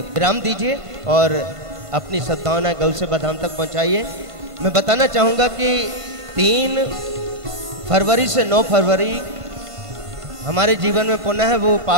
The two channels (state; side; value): late; left; 1.5 ms